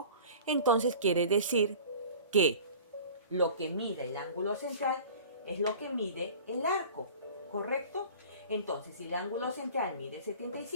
entonces quiere decir que lo que mide el ángulo central es lo que mide el arco, ¿correcto? Entonces, si el ángulo central mide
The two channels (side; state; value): both; inverted; correlation -0.42